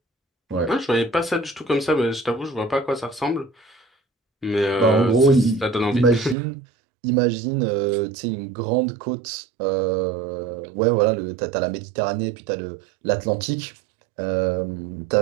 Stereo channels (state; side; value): drops out; left; at 6.4 s